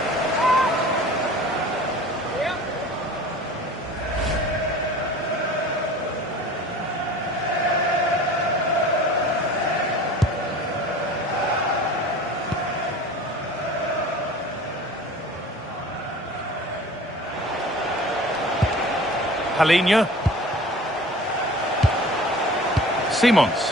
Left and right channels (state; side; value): normal; both; correlation 0.42